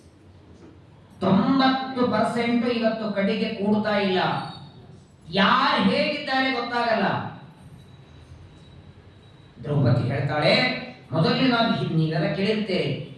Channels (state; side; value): identical; both; correlation 1.00